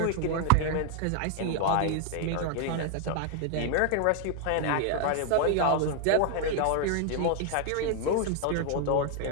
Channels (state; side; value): different; both; correlation 0.00